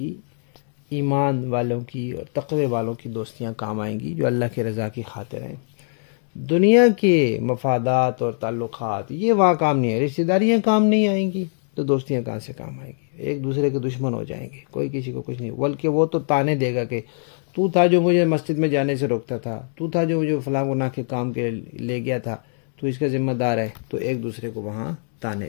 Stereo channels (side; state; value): right; silent; 61 dB below the other